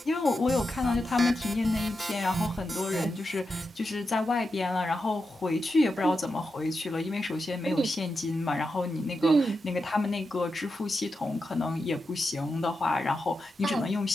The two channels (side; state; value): both; normal; correlation 0.88